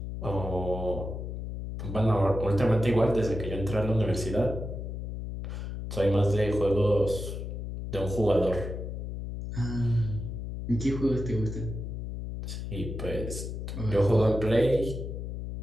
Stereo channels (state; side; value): noise; left; hum, 6 dB below the sound